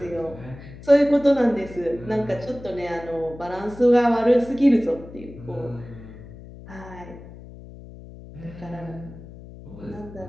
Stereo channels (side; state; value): left; noise; hum, 16 dB below the sound